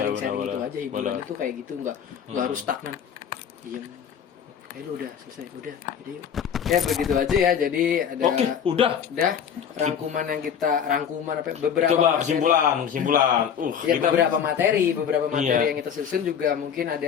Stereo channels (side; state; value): right; quieter; 8.0 dB